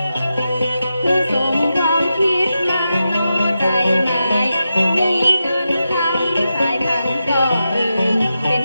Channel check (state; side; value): inverted; both; correlation -0.89